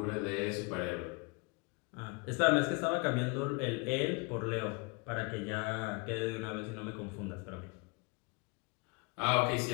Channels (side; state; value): right; quieter; 29.5 dB